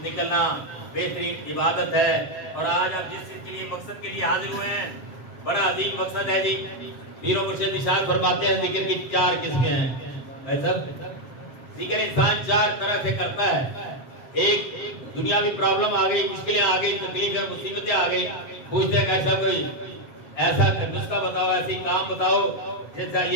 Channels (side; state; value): right; late; 7.5 ms